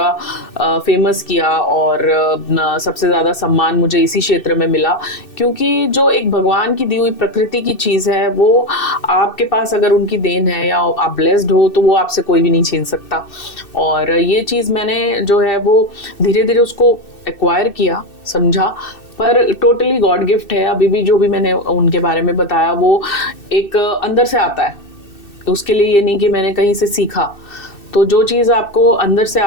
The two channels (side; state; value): right; late; 2.6 ms